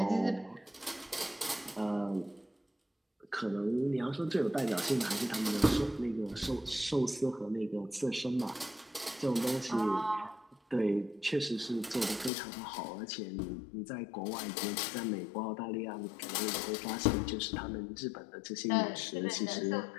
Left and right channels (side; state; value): right; drops out; at 12.3 s